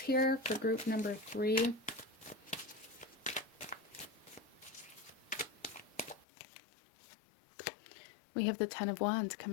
for group number 3? We have the Ten of Wands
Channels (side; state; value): right; drops out; at 6.2 s